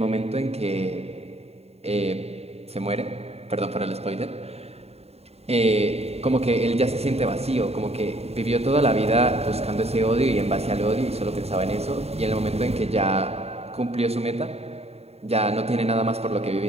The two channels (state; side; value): late; left; 0.30 ms